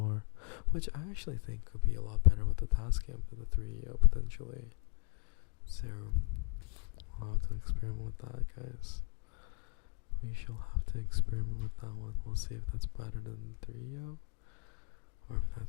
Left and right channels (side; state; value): right; quieter; 37.2 dB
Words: which I actually think could be a lot better with the TASCAM than the 3EO potentially. So, I'll have to experiment with that, guys. We shall have to experiment with that one. We'll see if that's better than 3EO, or if